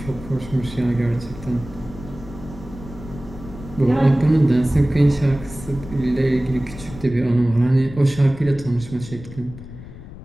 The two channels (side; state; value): left; noise; rumble, 14 dB below the sound